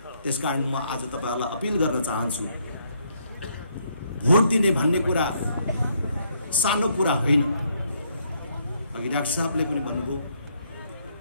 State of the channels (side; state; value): both; inverted; correlation -0.72